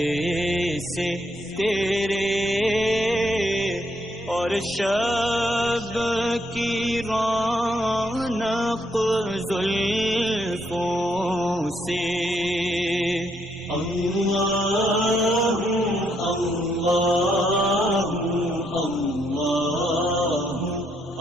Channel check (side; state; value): both; normal; correlation 0.74